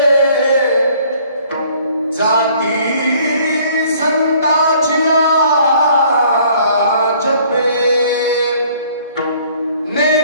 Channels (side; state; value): both; inverted; correlation -0.57